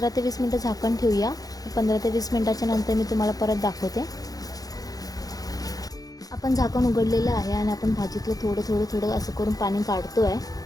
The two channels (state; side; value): late; right; 0.18 ms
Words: ते 20 मिनटं झाकण ठेवूया. 15 ते 20 मिनटाच्या नंतर मी तुम्हाला परत दाखवते. आपण झाकण उघडलेलं आहे आणि आपण भाजीतलं थोडं असं करून पाणी काढतोय.